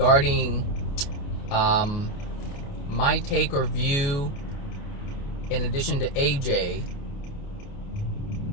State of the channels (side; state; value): right; late; 29 ms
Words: my take or view, in addition to AJ